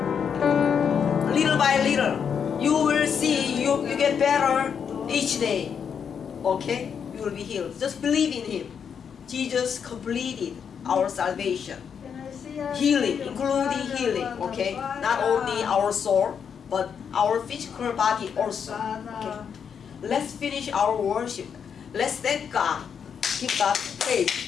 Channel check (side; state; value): right; quieter; 7.2 dB